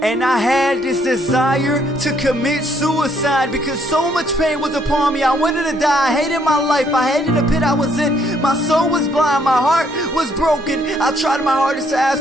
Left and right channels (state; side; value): normal; both; correlation 0.68